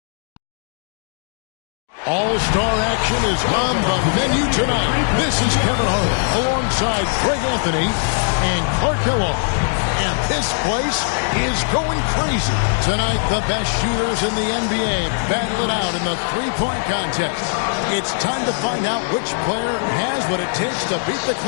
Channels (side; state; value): right; silent; digital silence